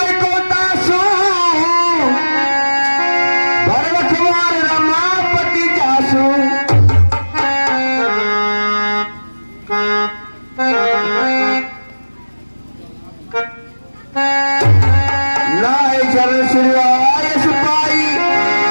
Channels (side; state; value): both; inverted; correlation -1.00